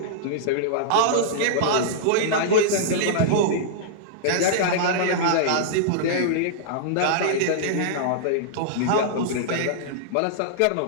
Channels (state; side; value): different; both; correlation -0.02